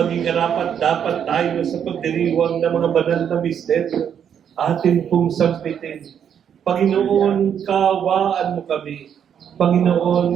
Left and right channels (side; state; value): left; quieter; 8.5 dB